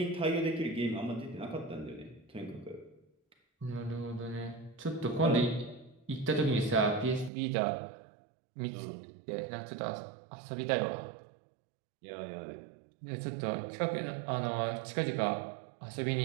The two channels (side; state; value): left; drops out; at 7.3 s